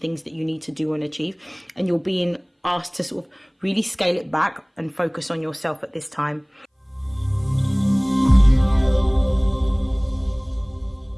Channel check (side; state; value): both; identical; correlation 1.00